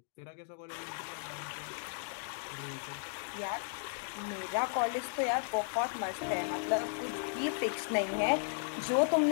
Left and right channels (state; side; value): silent; right; digital silence